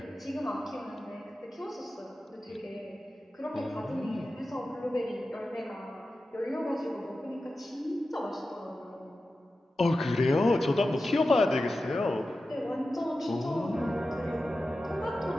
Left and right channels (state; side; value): normal; both; correlation 0.93